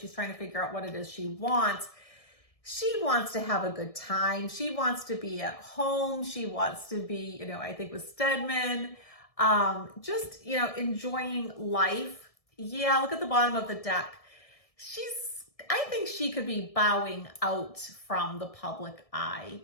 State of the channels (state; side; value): late; right; 1.7 ms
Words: trying to figure out what it is she wants. She wants to have a good time. She wants to be at home. She wants to be, you know, I think with Stedman, just, you know, enjoying life. Yeah, look at the bottom of the deck. I think she could be bowing out from the public eye.